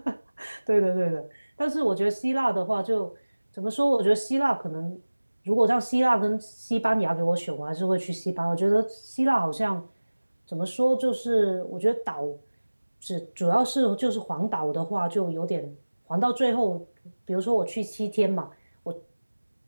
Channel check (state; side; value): inverted; both; correlation -1.00